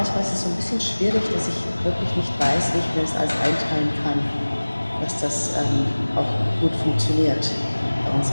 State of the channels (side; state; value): both; inverted; correlation -1.00